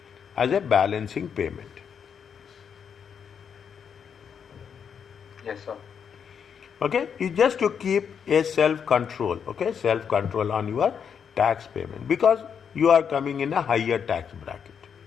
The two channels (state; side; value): quieter; right; 7.3 dB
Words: as a balancing payment. Yes, sir. Okay, it's just to keep a self-control, okay, self-control on your tax payment because you are coming in a higher tax bracket.